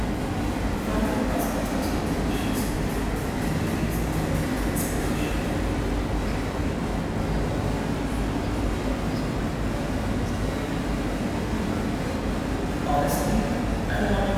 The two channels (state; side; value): identical; both; correlation 1.00